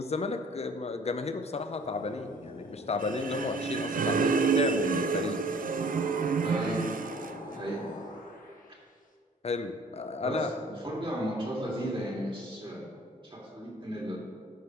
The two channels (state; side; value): normal; both; correlation 0.52